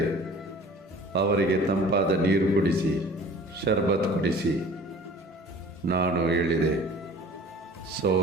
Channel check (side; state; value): both; normal; correlation 0.46